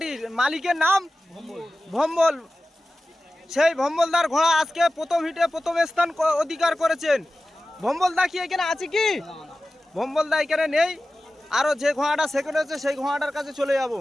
মালিকের নাম ভম্বল। সেই ভম্বলদার ঘোড়া আজকে প্রথম হিটে প্রথম স্থান অধিকার করেছেন। ভম্বলদা কি এখানে আছে কি? ভম্বলদা এখানে নেই। আরো যে ঘোড়াটা সেকেন্ড হয়েছে সেই ঘোড়াটার কাছে চলে যাব।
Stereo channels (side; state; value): both; normal; correlation 0.95